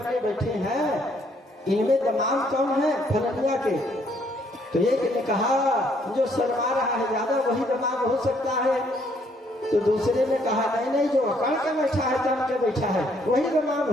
बैठे हैं इनमें दामाद कौन है? फलनिया के। तो एक ने कहा जो शर्मा रहा है ज्यादा वही दामाद हो सकता है। तो दूसरे ने कहा नहीं जो अकड़ के बैठा है, तन के बैठा है, वही दामाद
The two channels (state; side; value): normal; both; correlation 0.68